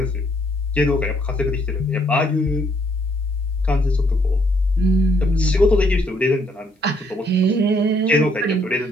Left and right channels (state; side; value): normal; both; correlation 0.69